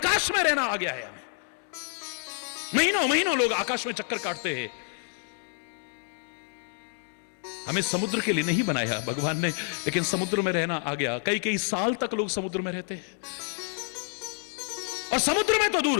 में रहना आ गया है हमें। महीनों महीनों लोग आकाश में चक्कर काटते हैं। हमें समुद्र के लिए नहीं बनाया भगवान ने, लेकिन समुद्र में रहना आ गया। कई कई साल तक लोग समुद्र में रहते हैं, और समुद्र में तो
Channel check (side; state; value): right; silent; 56 dB below the other